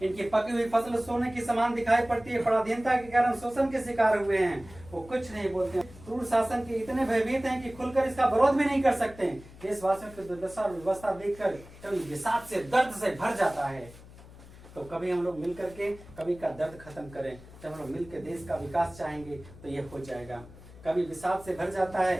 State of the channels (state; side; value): noise; left; hum, 19 dB below the sound